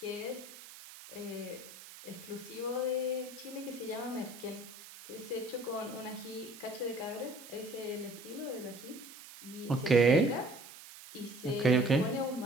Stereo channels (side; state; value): right; noise; hiss, 16 dB below the sound